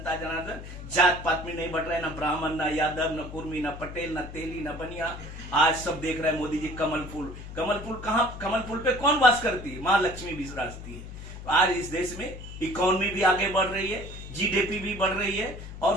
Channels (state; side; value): noise; left; hum, 12 dB below the sound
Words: जनार्दन जात पात में नहीं बढ़ रहा है, ना ब्राह्मण, ना यादव, ना कुर्मी, ना पटेल, ना तेली, ना बनिया। आज सब देख रहे हैं मोदी जी कमल फूल कहाँ, कमल फूल पे कौन वास करती है? माँ लक्ष्मी विराजती है। आज इस देश में इकोनॉमी भी आगे बढ़ रही है, जीडीपी भी बढ़ रही है, और